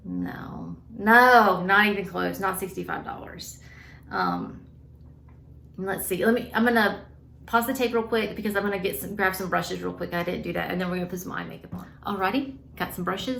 No, not even close. Not $65. Let's see. I'm gonna pause the tape real quick because I'm gonna grab some brushes real quick. I didn't do that, and then we're gonna put some eye makeup on. Alrighty, got some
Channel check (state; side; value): identical; both; correlation 1.00